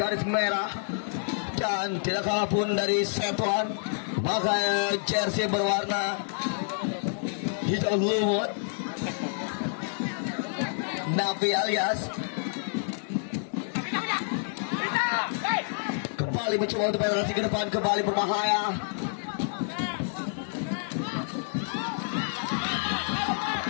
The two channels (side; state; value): right; silent; digital silence